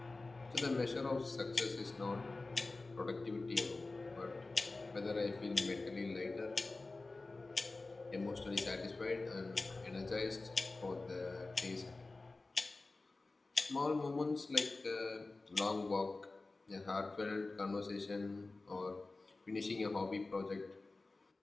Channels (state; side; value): quieter; right; 3.4 dB